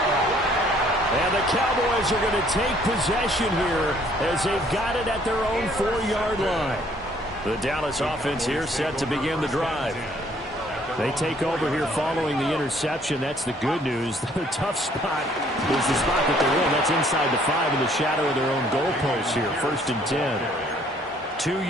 And the Cowboys are going to take possession here as they've got it at their own 4-yard line. The Dallas offense here set to begin the drive. They take over here following the interception. That's the good news. The tough spot is the spot that they're in. That's inside the 5 in the shadow of their own goalposts here. 1st and 10. 2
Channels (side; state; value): both; normal; correlation 0.62